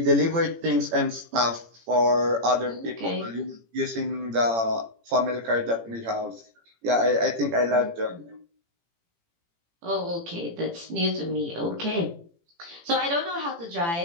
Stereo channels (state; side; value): late; left; 18 ms